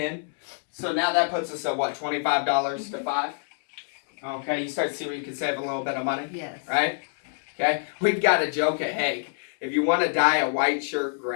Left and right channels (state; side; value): silent; right; digital silence